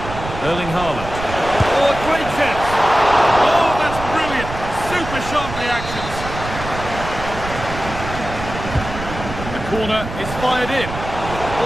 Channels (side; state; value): right; noise; rumble, 9 dB below the sound